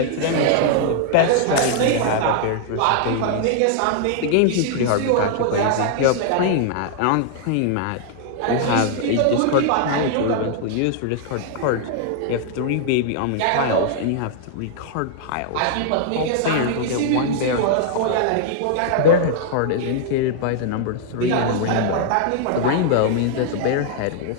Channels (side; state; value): both; different; correlation -0.01